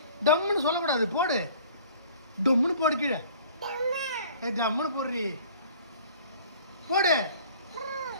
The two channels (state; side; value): inverted; both; correlation -0.51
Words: டம்முன்னு சொல்லக்கூடாது, போடு. டம்முன்னு போடு கீழே. ஜம்முன்னு போடுறி, போடு.